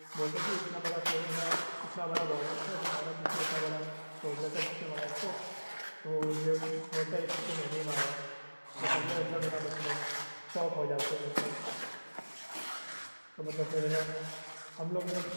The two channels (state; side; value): inverted; both; correlation -1.00